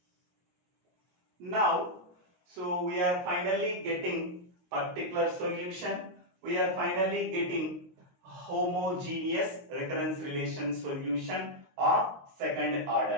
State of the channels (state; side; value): late; left; 22 ms